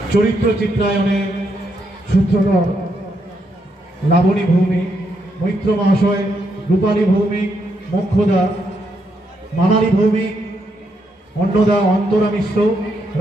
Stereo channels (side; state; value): both; normal; correlation 0.78